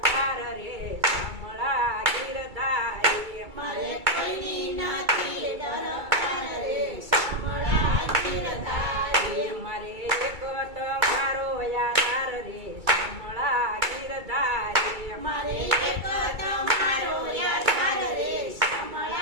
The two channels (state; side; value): late; left; 2.3 ms